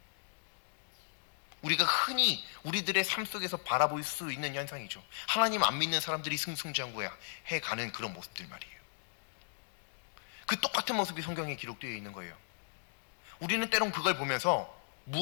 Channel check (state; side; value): silent; right; digital silence